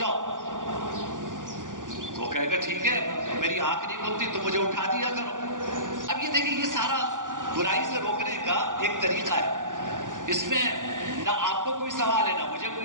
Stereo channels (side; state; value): left; late; 0.88 ms